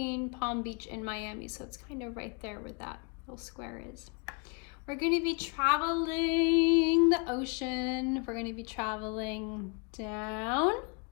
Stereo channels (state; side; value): quieter; right; 33.7 dB